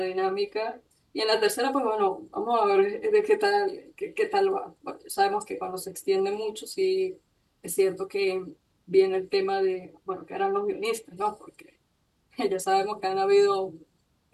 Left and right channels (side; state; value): both; identical; correlation 1.00